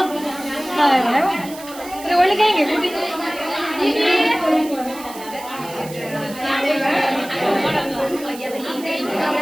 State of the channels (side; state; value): right; noise; hiss, 16 dB below the sound